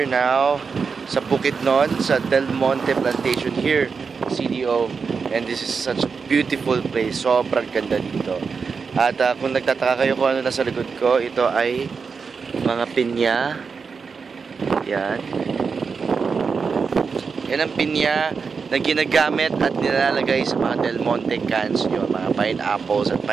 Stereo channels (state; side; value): quieter; left; 5.4 dB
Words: now sa Bukidnon, sa Del Monte Plantation here, CDO. And this is such a beautiful place. Sobrang ganda dito. At kung nagtataka kayo kung ano nasa likod ko, ito ay mga pinya. Yan. Yan ang pinya na ginagamit at nilalagay sa mga Del Monte cans nyo, mga pineapples at